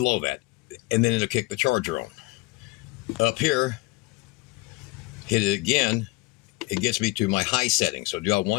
that. And then it'll kick the charger on. Up here, hit it again. It gets me to my high setting. So do I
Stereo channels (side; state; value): right; quieter; 21.7 dB